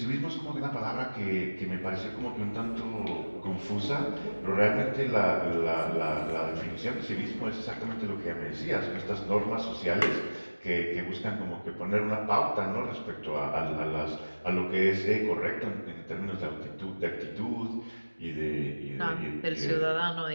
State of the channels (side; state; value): both; inverted; correlation -1.00